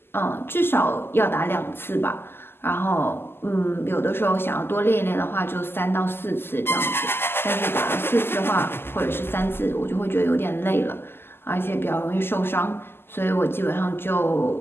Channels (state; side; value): late; right; 0.11 ms